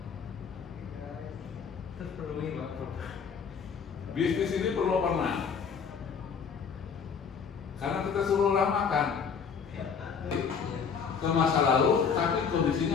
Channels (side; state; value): right; quieter; 6.4 dB